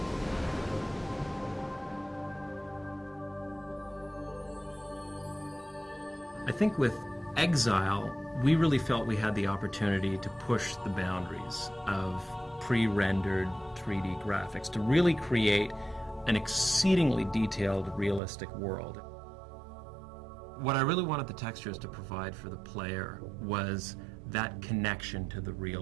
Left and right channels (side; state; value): left; drops out; at 18.2 s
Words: I think with Exile, we really felt we had the opportunity to push the boundaries of pre-rendered 3D graphics to really create an exceedingly detailed, realistic world. What I really wanted the textures to provide for the player was that connection to the